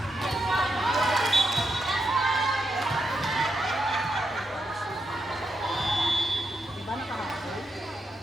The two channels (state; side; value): normal; both; correlation 0.84